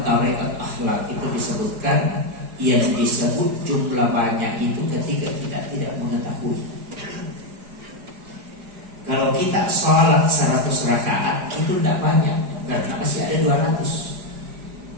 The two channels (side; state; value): left; late; 4.9 ms